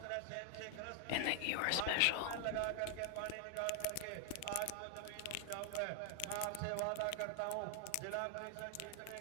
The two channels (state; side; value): different; both; correlation 0.00